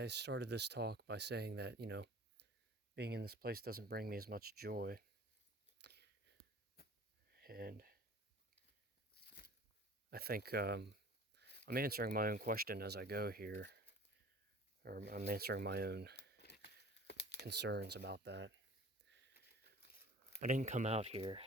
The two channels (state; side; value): normal; both; correlation 0.45